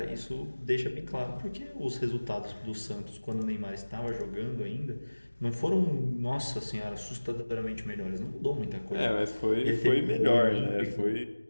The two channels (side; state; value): both; inverted; correlation -1.00